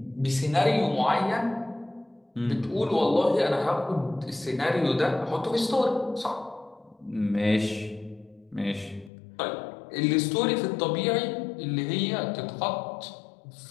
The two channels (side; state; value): right; drops out; at 9.1 s